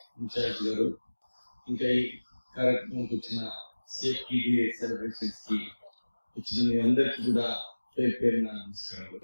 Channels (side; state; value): both; inverted; correlation -1.00